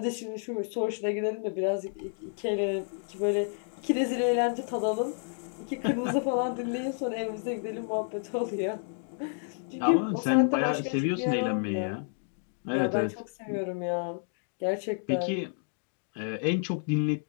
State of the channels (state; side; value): silent; right; 58 dB below the other